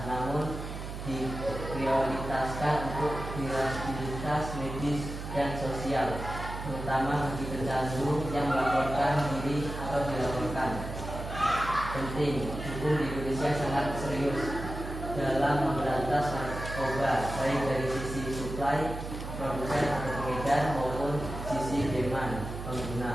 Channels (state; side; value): noise; right; hum, 8 dB below the sound